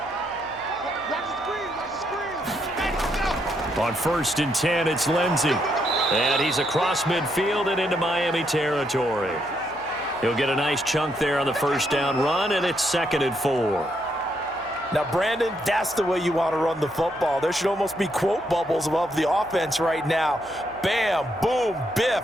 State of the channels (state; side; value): noise; left; hum, 26 dB below the sound